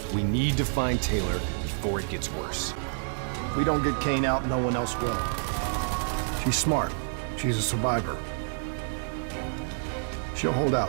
We need to find Taylor before it gets worse. If we don't get Kane out, no one else will. She's smart. She's a survivor. She'll hold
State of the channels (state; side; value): silent; left; digital silence